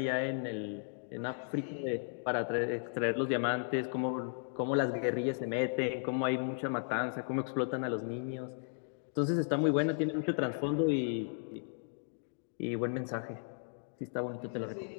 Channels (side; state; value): right; silent; digital silence